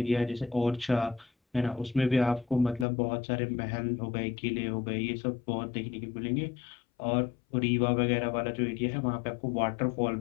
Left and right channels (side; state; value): right; drops out; at 2.9 s